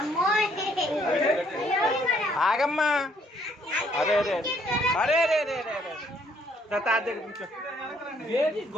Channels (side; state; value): both; normal; correlation 0.66